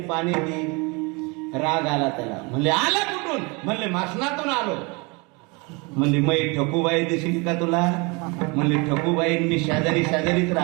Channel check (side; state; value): left; quieter; 28.9 dB